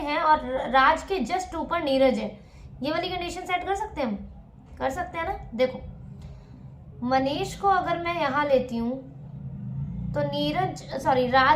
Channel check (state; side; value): identical; both; correlation 1.00